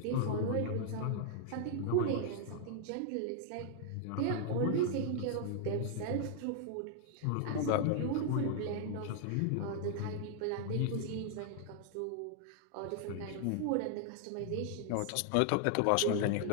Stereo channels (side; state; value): both; different; correlation 0.00